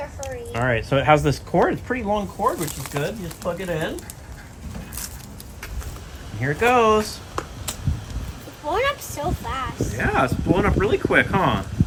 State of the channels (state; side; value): identical; both; correlation 1.00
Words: hurry. all right, so it has this cord. It's a pretty long cord, which is good. You just plug it in. And here it goes. It's blowing up so fast. Yeah, it's blowing up really quick, huh?